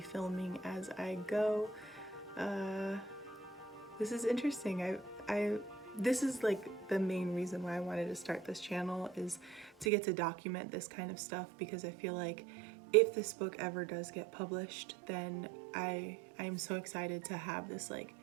filming as I go. This is interesting. This is like the main reason why I wanted to start this channel, is to get to document this kind of stuff, because I feel like if this book ever does get published, then I'm so excited to have this like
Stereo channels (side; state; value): left; drops out; at 9.9 s